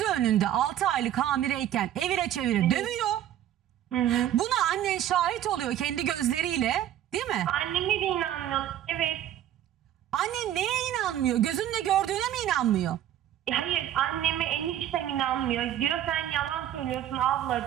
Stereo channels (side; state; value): left; quieter; 11.6 dB